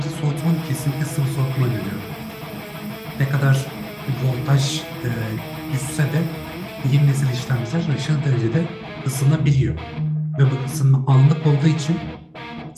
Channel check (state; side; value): identical; both; correlation 1.00